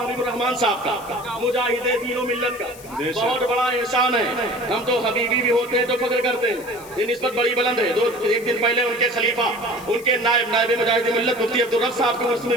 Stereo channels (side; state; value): left; noise; hiss, 19 dB below the sound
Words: حبیب الرحمان صاحب کا, مجاہد دین و ملت کا بہت بڑا احسان ہے. ہم تو حبیبی بھی ہوتے ہیں تو فخر کرتے ہیں, یہ نسبت بڑی بلند ہے. ایک دن پہلے ان کے خلیفہ, ان کے نائب مجاہد ملت مفتی عبدالرب صاحب کے عرس